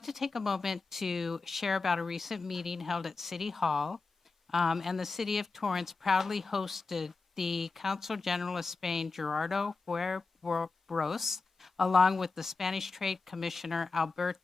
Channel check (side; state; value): right; quieter; 4.1 dB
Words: to take a moment to share about a recent meeting held at City Hall, and the City of Torrance proudly hosted the Consul General of Spain, Gerardo Huerros, along with the Spanish Trade Commissioner,